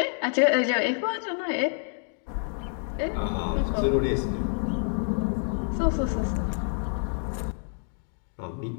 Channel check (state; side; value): silent; right; 60 dB below the other